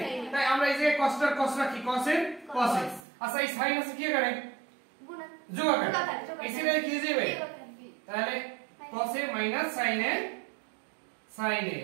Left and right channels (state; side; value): drops out; left; at 3.0 s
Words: তাই আমরা এই যে cos রাখি cos a আচ্ছা এই sin আছে কি করে যোগ আকারে এই সিরিজে কি যাবে তাহলে cos a - sin a